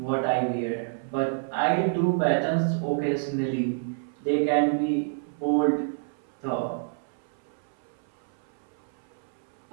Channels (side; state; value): left; silent; 59 dB below the other